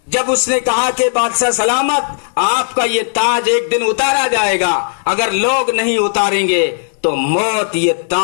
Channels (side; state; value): right; silent; digital silence